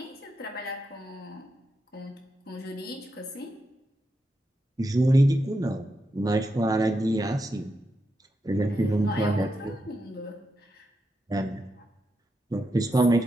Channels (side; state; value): both; normal; correlation 0.85